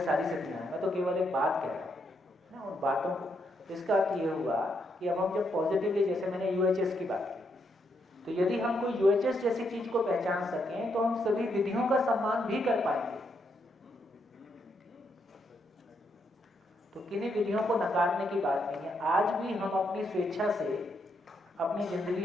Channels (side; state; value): both; normal; correlation 0.78